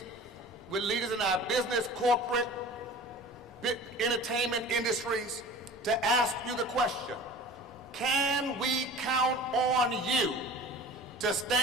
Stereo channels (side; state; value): both; normal; correlation 0.41